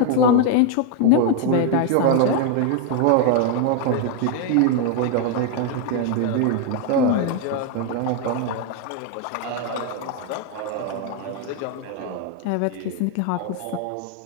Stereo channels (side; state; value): both; different; correlation 0.01